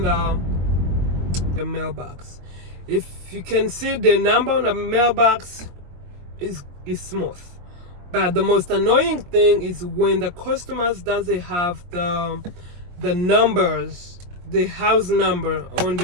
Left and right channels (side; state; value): left; late; 23 ms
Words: the mailbox. If you can see the number on the mailbox, is smooth. But the most annoying thing is when the customers doesn't have the numbers, the house number on